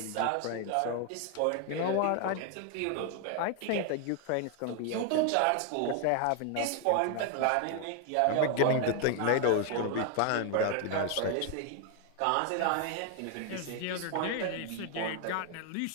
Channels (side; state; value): both; different; correlation 0.00